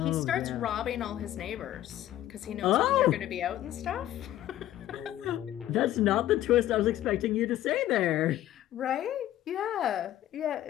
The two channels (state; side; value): quieter; right; 13.3 dB